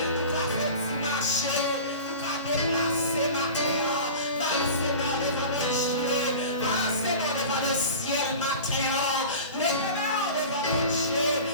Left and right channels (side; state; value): both; inverted; correlation -0.36